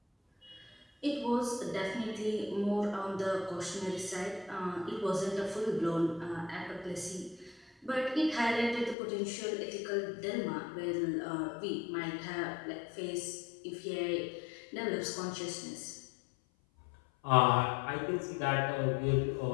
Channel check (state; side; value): drops out; right; at 9.0 s